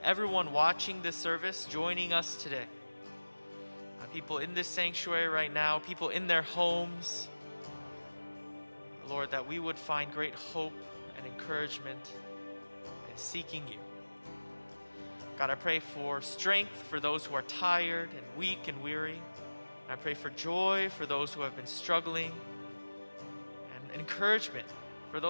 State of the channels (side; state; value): both; inverted; correlation -1.00